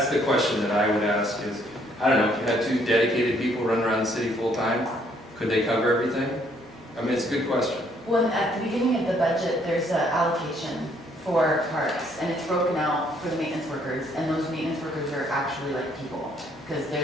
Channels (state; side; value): normal; both; correlation 0.67